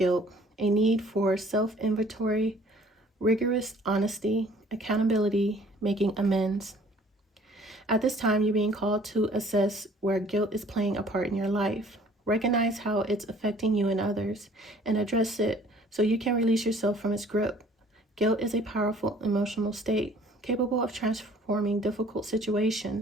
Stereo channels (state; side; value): normal; both; correlation 0.54